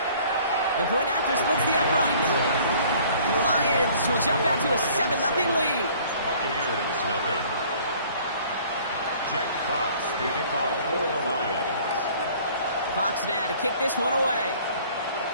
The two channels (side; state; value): both; inverted; correlation -0.53